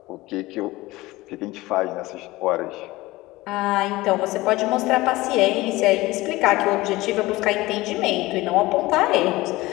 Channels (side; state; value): right; quieter; 19.6 dB